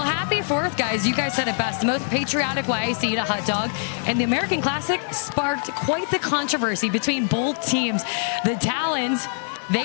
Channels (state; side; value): silent; right; 56 dB below the other